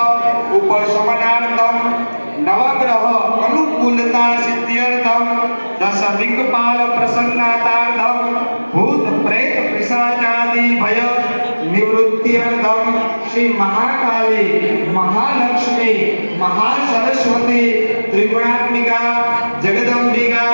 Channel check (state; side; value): inverted; both; correlation -1.00